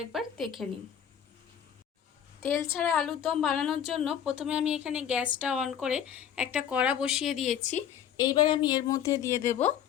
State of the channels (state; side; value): quieter; right; 9.1 dB